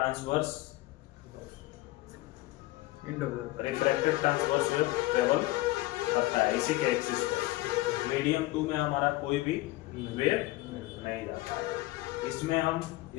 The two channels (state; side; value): quieter; right; 19.0 dB